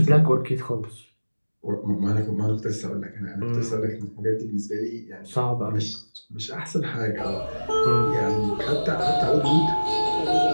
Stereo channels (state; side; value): inverted; both; correlation -1.00